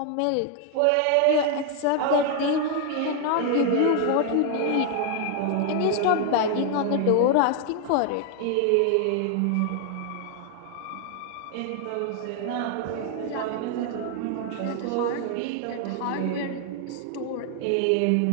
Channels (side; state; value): both; different; correlation 0.00